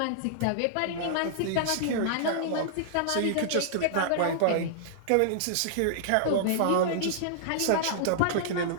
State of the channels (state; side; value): different; both; correlation -0.01